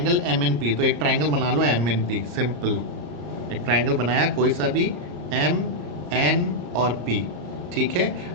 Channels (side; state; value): left; late; 34 ms